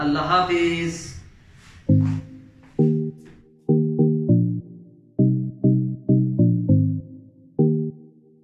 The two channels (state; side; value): identical; both; correlation 1.00